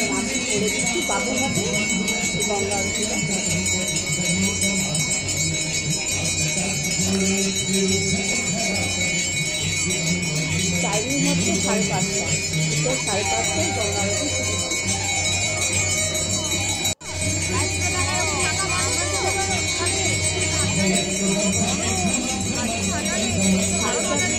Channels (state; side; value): identical; both; correlation 1.00